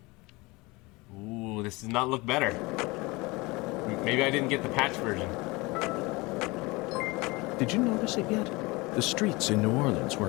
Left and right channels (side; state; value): right; quieter; 23.9 dB